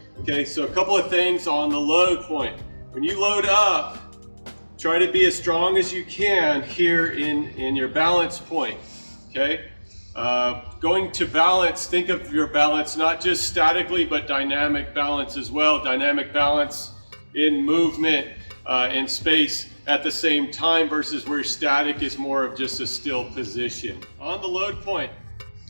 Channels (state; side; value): inverted; both; correlation -1.00